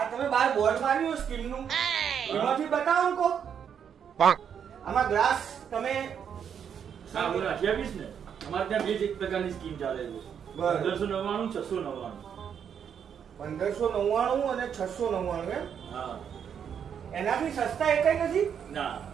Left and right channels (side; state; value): left; quieter; 8.0 dB